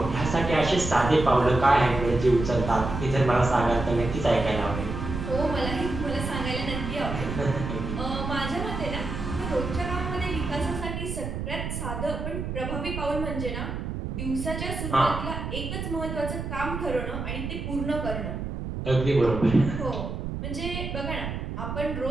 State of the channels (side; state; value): right; noise; rumble, 5 dB below the sound